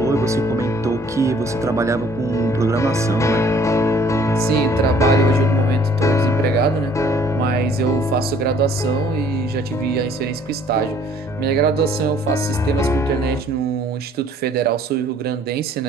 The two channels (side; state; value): both; normal; correlation 0.58